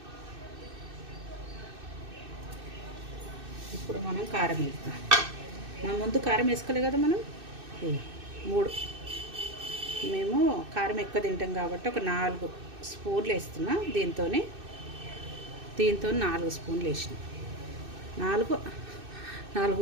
కారం వేద్దాం. మనం ముందు కారం వేసుకోలే కదా మనం. 3 మేము కారం ఎక్కువ తింటాం కాబట్టి ఒక 4 స్పూన్లు వేస్తున్నా. దీంతో 4 స్పూన్లు వేసిన.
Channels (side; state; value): left; late; 2.6 ms